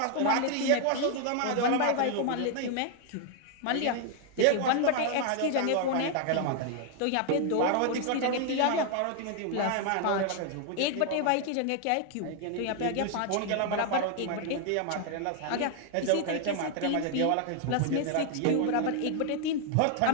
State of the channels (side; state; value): both; different; correlation 0.00